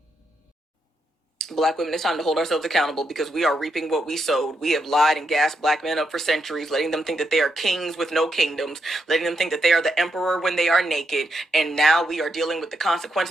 Black women, it's time to hold ourselves accountable because we are reaping what we sowed. We have lied and gassed Black men up for centuries, letting them think that they are kings with no kingdoms, letting them think that they are the emperor when they are naked. And now we are dealing with the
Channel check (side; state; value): both; normal; correlation 0.81